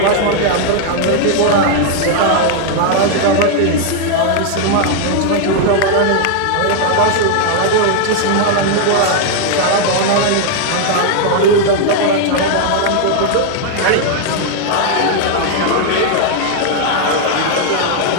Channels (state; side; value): different; both; correlation 0.00